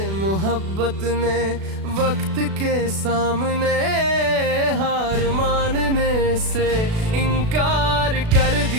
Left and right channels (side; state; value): left; late; 36 ms